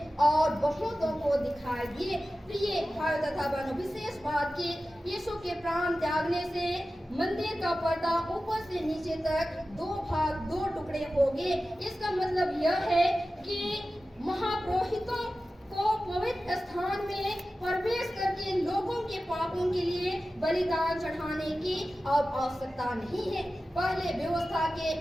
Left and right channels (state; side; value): normal; both; correlation 0.94